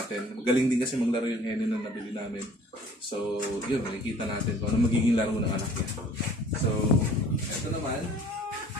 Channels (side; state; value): both; normal; correlation 0.52